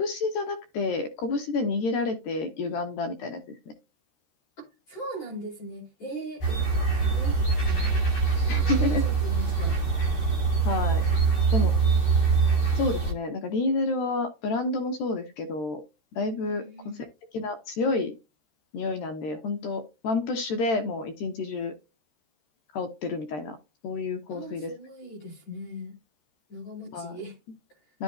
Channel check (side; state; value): right; late; 13 ms